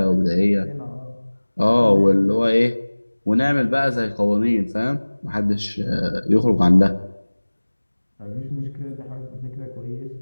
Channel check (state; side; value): inverted; both; correlation -1.00